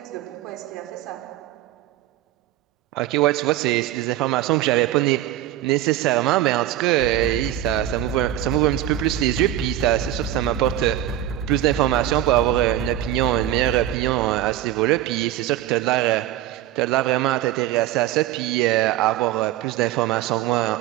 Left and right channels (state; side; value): quieter; left; 13.0 dB